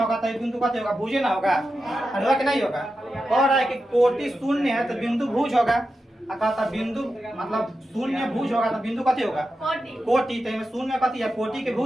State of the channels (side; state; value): both; normal; correlation 0.90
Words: तो बिंदु कथी होगा भुज ना होगा, होगा कि नहीं होगा। कह रहा है कि कोटि 0 है तो बिंदु भुज होगा। कहता बिंदु मतलब 0 भुज होगा तो बिंदु कथी होगा कोटि, तो 0 कथी है कोटि के